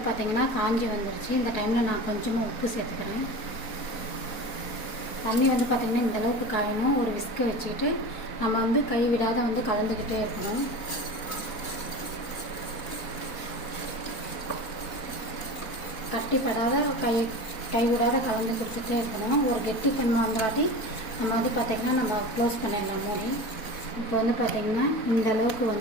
பார்த்திங்கன்னா காஞ்சி வந்துருச்சு. இந்த டைமில் நான் கொஞ்சமாக உப்பு சேர்த்துக்கிறேன். தண்ணி வந்து பார்த்திங்கன்னா இந்தளவுக்கு காயணும். ஒரு விஸ்கை வச்சுக்கிட்டு நம்ம வந்து கை விடாத வந்து கலந்துக்கிட்டே இருக்கணும். கட்டிப்படாத கை விடாத கலந்து கொடுத்துட்டே இருக்கணும். ஒரு கெட்டி தன்மை வந்தாட்டி நம்ம வந்து பார்த்திங்கன்னா நம்ம க்ளோஸ் பண்ணிடலாம் மூடி. இப்போ வந்து பார்த்திங்கன்னா இந்த அளவுக்கு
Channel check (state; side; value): late; right; 4.1 ms